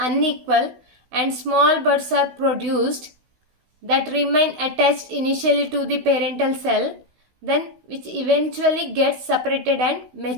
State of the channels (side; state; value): left; late; 16 ms